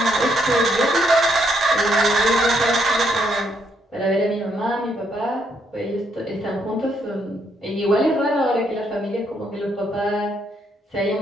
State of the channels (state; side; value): normal; both; correlation 0.74